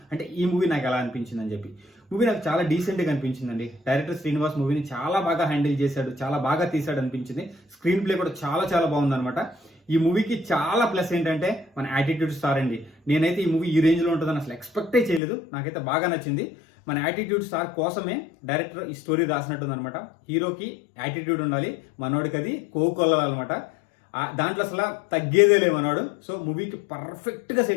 అంటే ఈ మూవీ నాకు ఎలా అనిపించింది అని చెప్పి. మూవీ నాకు చాలా డీసెంట్గా అనిపించిందండి. డైరెక్టర్ శ్రీనివాస్ మూవీని చాలా బాగా హ్యాండిల్ చేశాడు, చాలా బాగా తీశాడు అనిపించింది. స్క్రీన్ ప్లే కూడా చాలా బాగుందన్నమాట. ఈ మూవీకి చాలా ప్లస్ ఏంటంటే మన యాటిట్యూడ్ స్టార్ అండి. నేనైతే ఈ మూవీ ఈ రేంజ్లో ఉంటుందని అసలు ఎక్స్పెక్టే చేయలేదు. నాకైతే బాగా నచ్చింది. మన యాటిట్యూడ్ స్టార్ కోసమే డైరెక్టర్ ఈ స్టోరీ రాసినట్టుందనమాట. హీరోకి యాటిట్యూడ్ ఉండాలి, మనోడికి అది కోకొల్లాలన్నమాట. దాంట్లో అసలు తగ్గేదే లేదు మనోడు. సో మూవీకి పర్ఫెక్ట్గా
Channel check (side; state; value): right; drops out; at 15.2 s